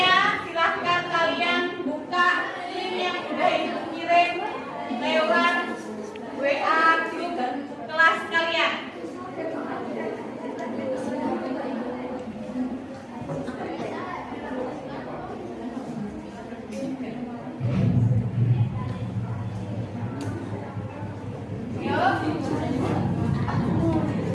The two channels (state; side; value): identical; both; correlation 1.00